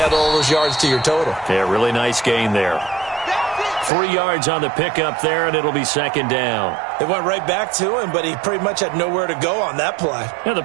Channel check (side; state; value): left; drops out; at 3.9 s